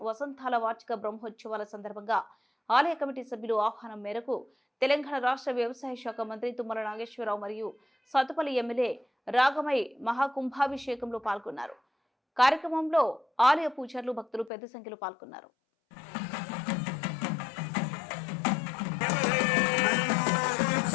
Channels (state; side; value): drops out; right; at 14.5 s